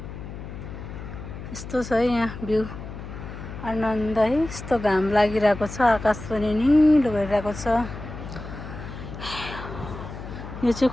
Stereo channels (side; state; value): left; noise; hum, 10 dB below the sound